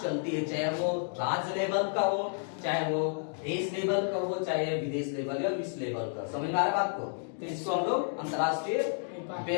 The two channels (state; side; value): silent; right; 57 dB below the other